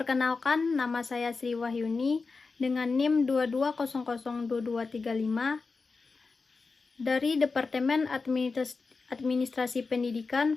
nama saya Sri Wahyuni dengan NIM 22002235 dari Departemen Administrasi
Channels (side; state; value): right; quieter; 4.3 dB